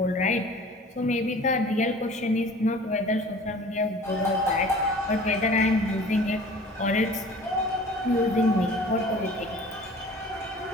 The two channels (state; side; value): normal; both; correlation 0.45